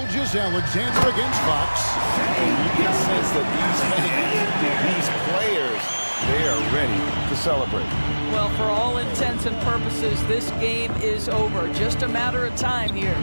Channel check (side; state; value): both; inverted; correlation -1.00